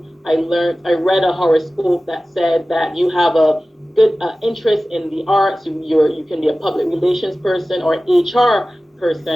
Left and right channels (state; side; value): normal; both; correlation 0.96